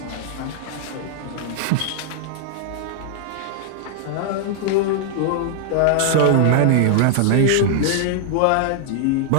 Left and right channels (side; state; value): both; different; correlation -0.01